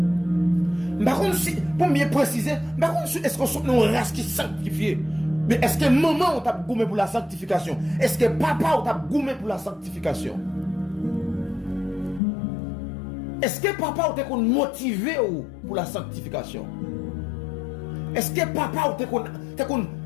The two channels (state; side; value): drops out; right; at 12.2 s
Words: Par contre, pour mieux préciser, par contre, est-ce qu'on est une race qui est sanctifiée? Mais est-ce que maman t'a gommé pour la sanctification? Est-ce que papa t'a gommé pour la sanctification? Est-ce que papa t'a motivé pour la sanctification? Est-ce que papa t'a